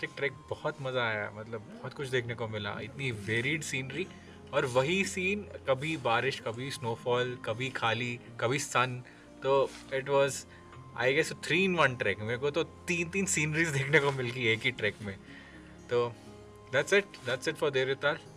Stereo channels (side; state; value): both; identical; correlation 1.00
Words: trek. बहुत मज़ा आया, मतलब बहुत कुछ देखने को मिला, इतनी वेरिड सीनरी और वही सीन, कभी बारिश, कभी स्नोफॉल, कभी खाली, कभी सन। तो it was I guess 3-in-1 trek. मेरे को तो 3 सीनरीज देखने को मिल गई एक ही ट्रैक में। तो that's it for Devtal.